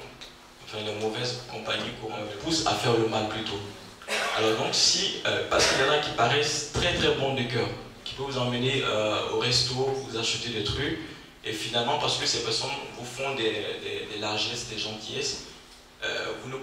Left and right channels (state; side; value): identical; both; correlation 1.00